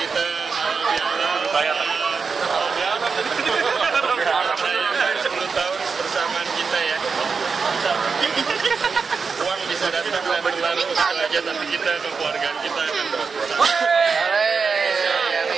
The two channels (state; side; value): quieter; left; 5.2 dB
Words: bayar. 10 tahun persamaan kita ya. Uang bisa datang dan berlalu aja, tapi kita kekeluargaan kita akan terus bersama.